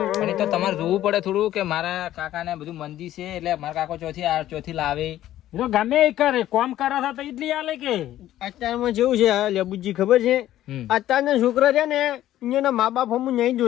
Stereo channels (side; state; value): right; quieter; 13.3 dB